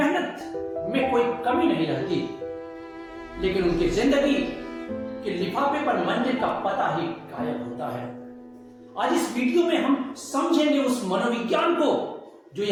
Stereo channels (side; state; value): both; identical; correlation 1.00